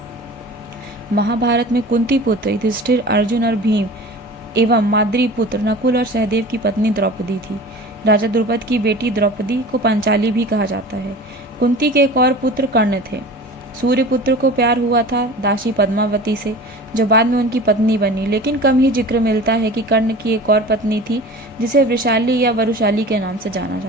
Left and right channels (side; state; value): both; normal; correlation 0.38